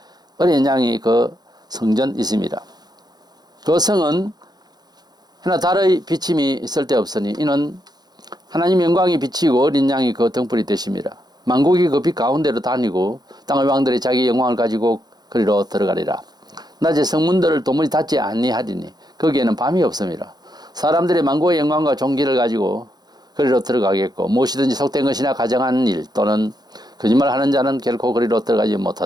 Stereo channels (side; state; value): left; late; 0.19 ms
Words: 어린 양이 그 성전 있음이라. 그 성은 하나 달의 비침이 있을 데 없으니 이는 하나님 영광이 비치고 어린 양이 그 등불이 되심이라. 만국이 그 빛 가운데로 다니고 땅의 왕들이 자기 영광을 가지고 그리로 들어가리라. 낮에 성문들을 도무지 닫지 아니하리니 거기에는 밤이 없음이라. 사람들이 만국의 영광과 존귀를 가지고 그리로 들어가겠고 무엇이든지 속된 것이나 가정한 일 또는 거짓말하는 자는 결코 그리로 들어가지